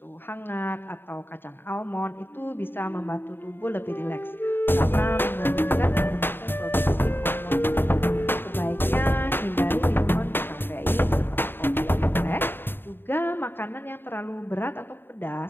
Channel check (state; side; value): late; right; 0.099 ms